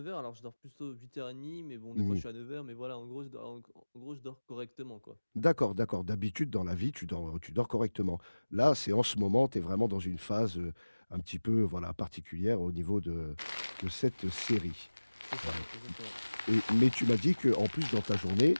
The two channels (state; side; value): inverted; both; correlation -1.00